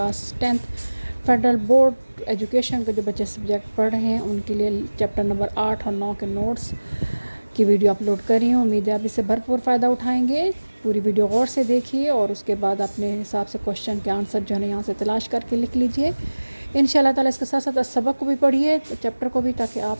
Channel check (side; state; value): both; inverted; correlation -1.00